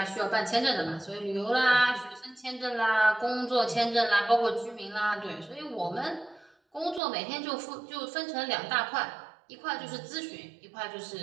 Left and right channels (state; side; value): drops out; left; at 7.0 s